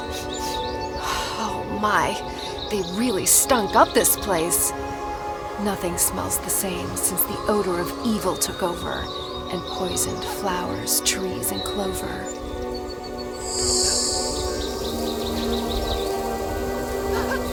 Oh my, they really stunk up this place. Nothing smells the same since the odor of evil took over and poisoned flowers, trees, and clover.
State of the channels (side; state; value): both; identical; correlation 1.00